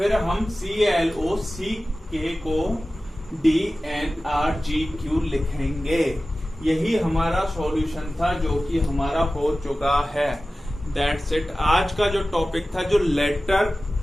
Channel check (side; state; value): both; normal; correlation 0.96